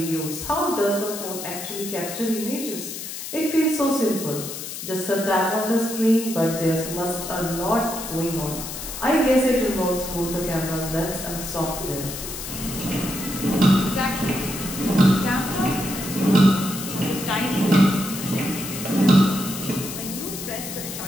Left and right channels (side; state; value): left; noise; hiss, 8 dB below the sound